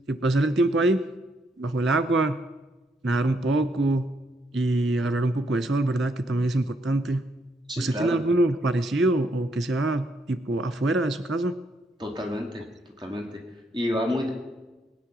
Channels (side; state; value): both; normal; correlation 0.74